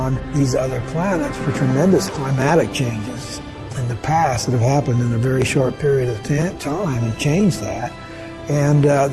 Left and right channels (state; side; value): identical; both; correlation 1.00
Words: these other planets for tremendous climatic changes in the past that have happened in a very short period of time and changed that. And